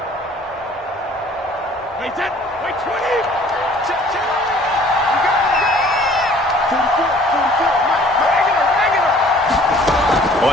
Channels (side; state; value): both; normal; correlation 0.54